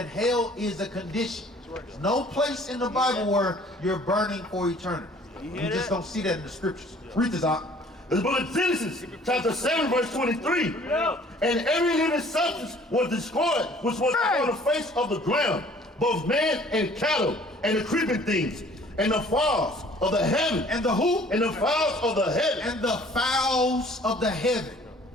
hell is a condition. There's no place in the Bible where you're burning for eternity. You just don't see that in the scriptures. Read this out. The book of Genesis, chapter 7, verse 23. And every living substance was destroyed, which was on the face of the ground, both man and cattle, and the creeping things, and the fowls of the heaven. And the who? And the fowls of the heaven. And the fowls of the heaven.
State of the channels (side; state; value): both; normal; correlation 0.54